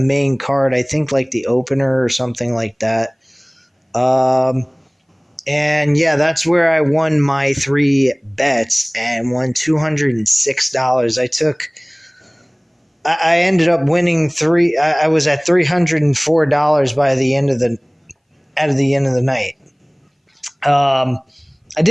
card, I think like the opener or something like that. And yeah, that's where I won my 3 bets and won $206. I ended up winning I was at $304 by the end of the night. I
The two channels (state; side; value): identical; both; correlation 1.00